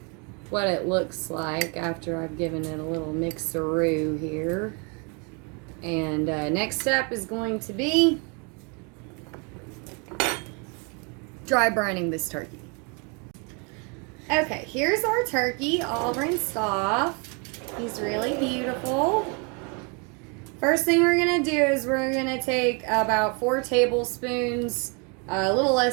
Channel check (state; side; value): quieter; left; 34.0 dB